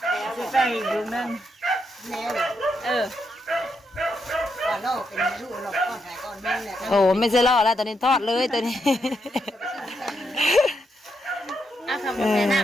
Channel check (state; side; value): normal; both; correlation 0.80